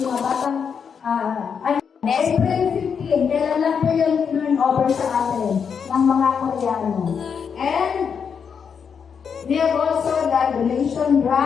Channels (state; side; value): quieter; right; 6.7 dB